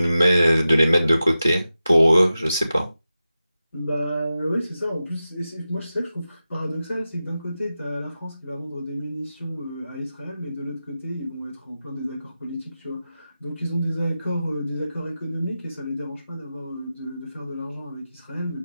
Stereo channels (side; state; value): both; inverted; correlation -0.93